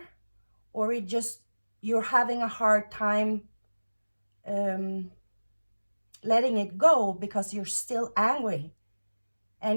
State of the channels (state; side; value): inverted; both; correlation -1.00